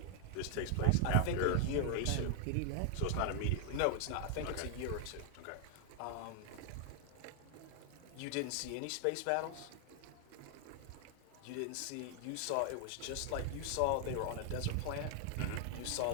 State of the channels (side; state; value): both; different; correlation 0.00